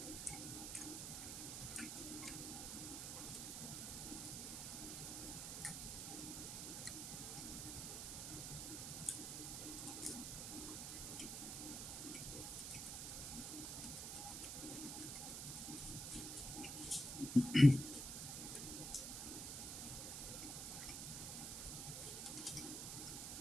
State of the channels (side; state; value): right; noise; hiss, 4 dB below the sound